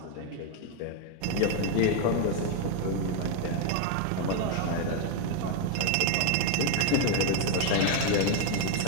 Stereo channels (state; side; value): different; both; correlation 0.01